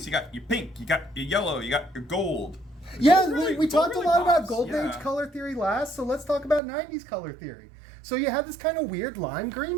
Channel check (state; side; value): drops out; left; at 6.6 s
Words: You got your pink, you got your yellow, you got your gold. We talked a lot about Golden Age color theory last, so let's talk about 90s color theory. So you have this kind of weird lime